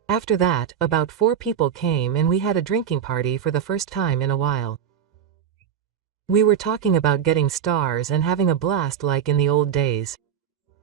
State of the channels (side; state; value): left; quieter; 8.6 dB